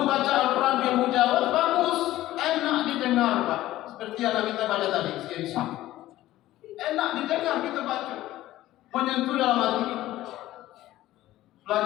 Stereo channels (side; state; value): right; quieter; 15.3 dB